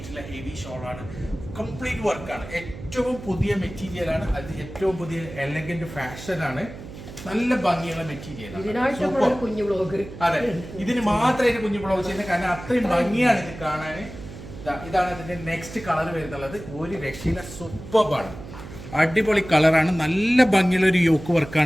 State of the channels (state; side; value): noise; right; hum, 13 dB below the sound